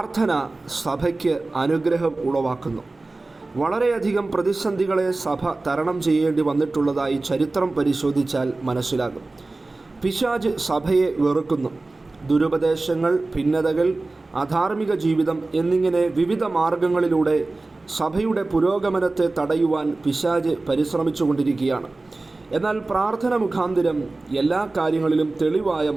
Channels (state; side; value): quieter; left; 3.2 dB